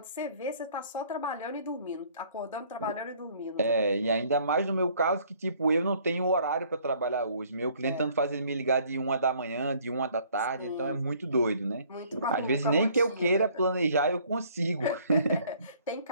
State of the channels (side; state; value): both; inverted; correlation -0.59